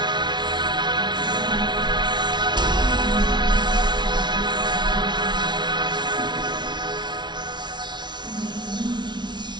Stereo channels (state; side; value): late; left; 0.21 ms